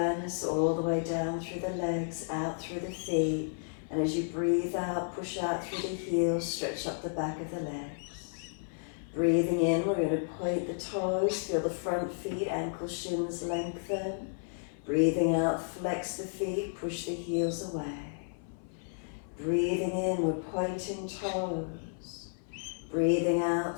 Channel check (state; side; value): silent; right; 56 dB below the other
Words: all the way down through the legs, out through the feet. And as you breathe out, push out through the heels, stretch up the back of the legs. Breathing in, we're going to point the toes, feel the front feet, ankle shins lengthen. Breathing out, flex the feet, push the heels away. Breathing in, we're pointing toes. Breathing